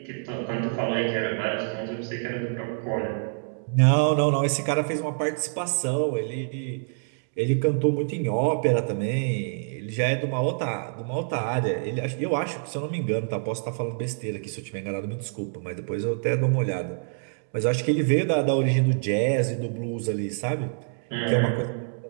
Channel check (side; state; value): left; silent; digital silence